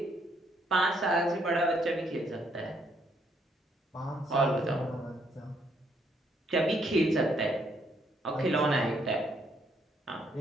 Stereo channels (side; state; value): both; normal; correlation 0.72